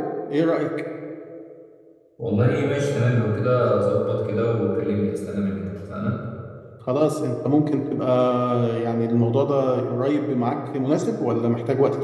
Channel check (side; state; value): both; identical; correlation 1.00